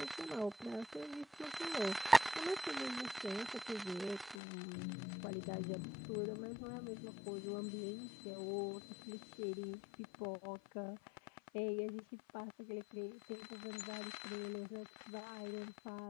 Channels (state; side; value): drops out; right; at 4.4 s